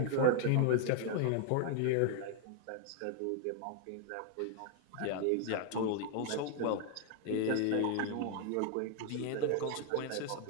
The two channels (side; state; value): both; different; correlation 0.00